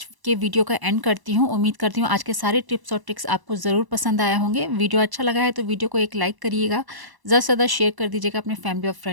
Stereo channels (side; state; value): left; late; 1.0 ms